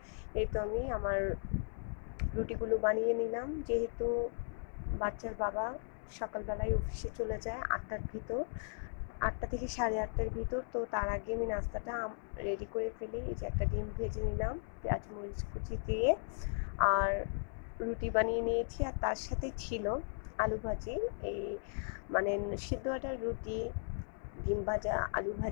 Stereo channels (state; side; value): silent; right; 53 dB below the other